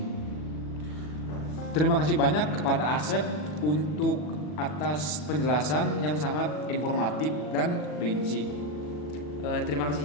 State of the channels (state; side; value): late; right; 40 ms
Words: Terima kasih banyak kepada Asep untuk atas penjelasan yang sangat informatif dan rinci. Terima kasih